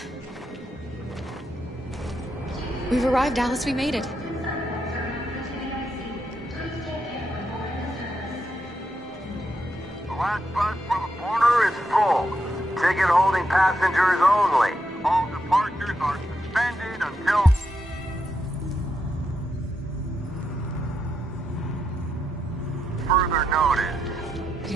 We've arrived, Alice. We made it. The last bus for the border is full. Ticket holding passengers only. All departures are suspended until... further notice. We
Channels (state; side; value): normal; both; correlation 0.82